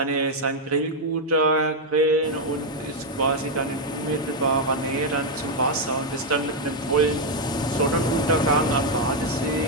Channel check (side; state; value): both; normal; correlation 0.01